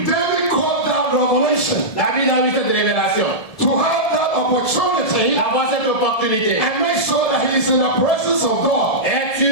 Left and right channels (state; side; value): late; right; 1.7 ms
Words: David called that revelation David a eu cette révélation, to have that opportunity d'avoir cette opportunité. and make sure that he is in the presence of God. Être